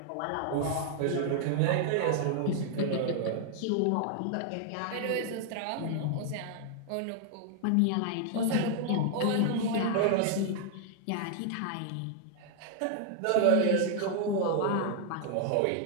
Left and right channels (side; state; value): both; different; correlation 0.00